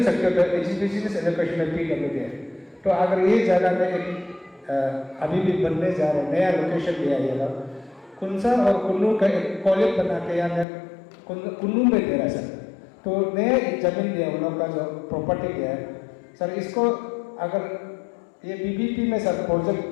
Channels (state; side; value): drops out; right; at 10.7 s